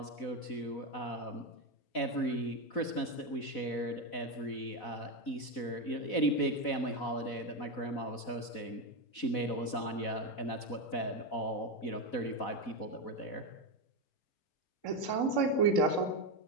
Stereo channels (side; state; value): right; late; 4.0 ms